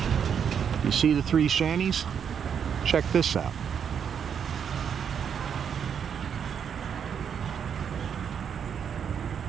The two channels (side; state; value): left; quieter; 7.7 dB